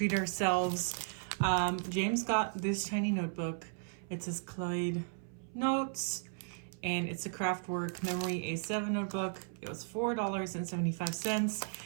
ourselves. James got this tiny notebook. It says Clyde Notes, and it's a Craftwork Memory A7 notebook. It was $4.75,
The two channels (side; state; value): left; silent; 54 dB below the other